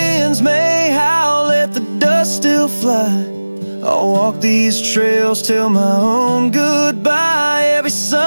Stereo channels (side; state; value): both; inverted; correlation -1.00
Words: fly. I'll walk these trails till my own goodbye. Every